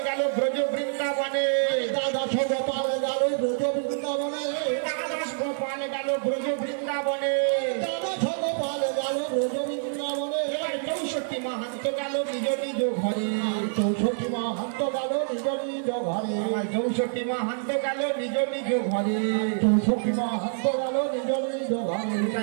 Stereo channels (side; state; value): left; silent; digital silence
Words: গেল ব্রজ বৃন্দাবনে দ্বাদশ গোপাল গেল ব্রজ বৃন্দাবনে দ্বাদশ গোপাল গেল ব্রজ বৃন্দাবনে দ্বাদশ গোপাল গেল ব্রজ বৃন্দাবনে এবার 64 মাহান্ত গেল নিজ নিজ ঘরে 64 মাহান্ত গেল নিজ নিজ ঘরে আমার 64 মাহান্ত গেল নিজ নিজ ঘরে 64 মাহান্ত গেল নিজ নিজ ঘরে